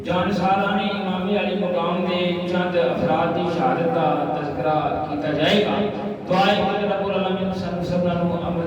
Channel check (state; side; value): identical; both; correlation 1.00